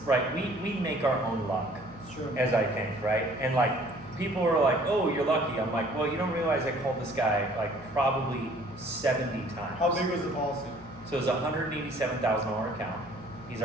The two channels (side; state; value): both; normal; correlation 0.56